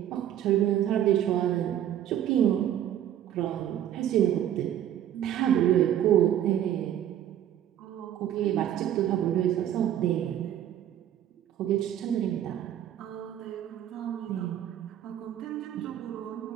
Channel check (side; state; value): left; quieter; 11.0 dB